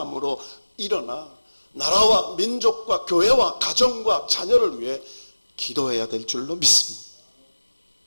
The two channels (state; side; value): inverted; both; correlation -1.00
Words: 일어나 나라와 민족과 교회와 가정과 자녀를 위해 기도해야 될 줄로 믿습니다.